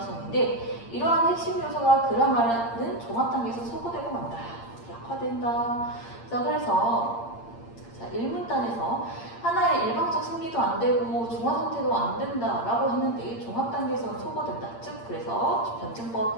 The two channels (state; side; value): late; right; 8.7 ms